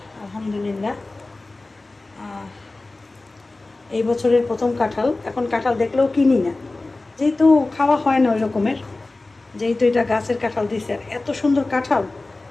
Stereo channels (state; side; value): quieter; right; 3.1 dB